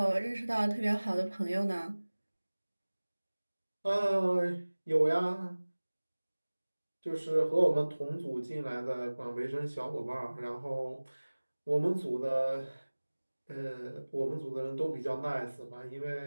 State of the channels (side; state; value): both; inverted; correlation -1.00